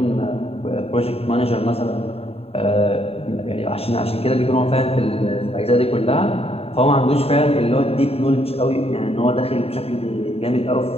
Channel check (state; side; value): late; right; 0.29 ms